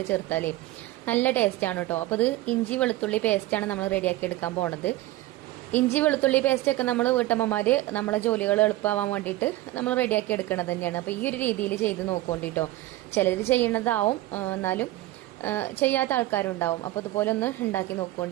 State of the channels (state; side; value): quieter; left; 16.8 dB